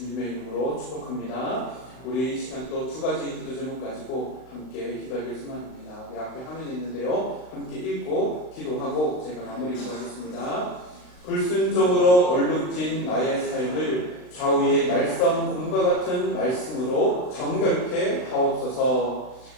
이름으로 축복합니다. 우리 이 시간 또 두 가지 기도 제목 가지고 함께 기도하기를 소망합니다. 내 앞에 화면이 있는데요, 함께 읽고 기도하고 제가 마무리 기도하겠습니다. 불순종으로 얼룩진 나의 삶을 좌우의 날성 곰과 같은 말씀으로 정결케 하옵소서.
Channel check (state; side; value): late; right; 39 ms